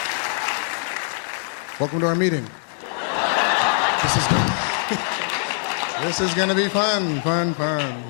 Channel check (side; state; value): right; silent; digital silence